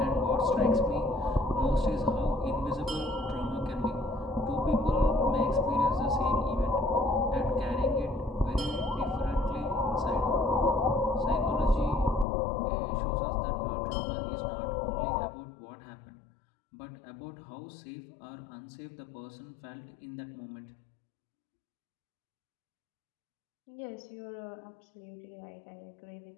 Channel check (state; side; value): drops out; right; at 12.2 s